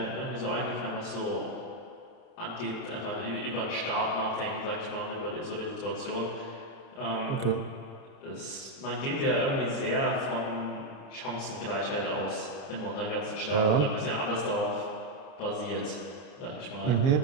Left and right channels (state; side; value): late; right; 29 ms